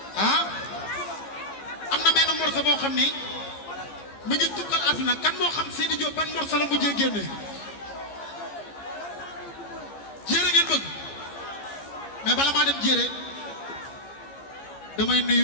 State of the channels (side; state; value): right; late; 14 ms